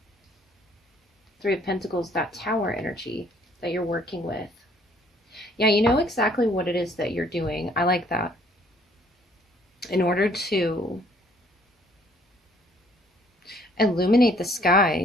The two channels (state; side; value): normal; both; correlation 0.61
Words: Three of Pentacles, that Tower energy that you're working with. Yeah, you know exactly what it is that you're doing. I like that. In order to illuminate the